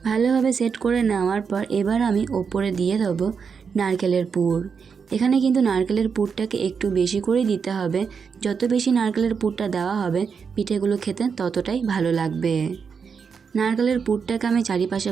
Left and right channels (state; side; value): quieter; left; 6.0 dB